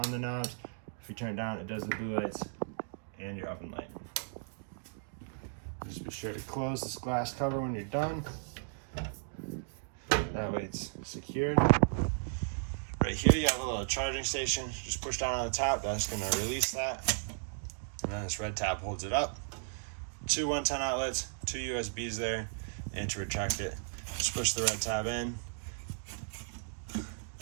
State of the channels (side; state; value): left; silent; digital silence